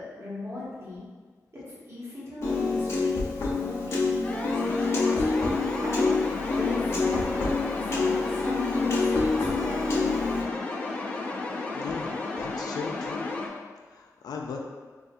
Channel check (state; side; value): quieter; right; 3.2 dB